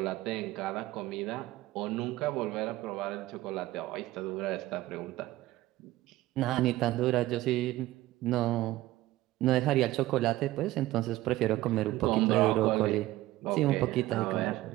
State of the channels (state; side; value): quieter; left; 16.7 dB